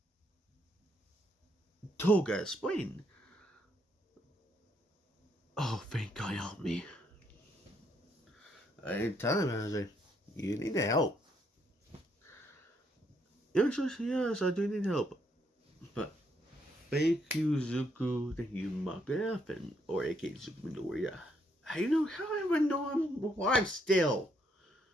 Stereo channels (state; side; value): normal; both; correlation 0.73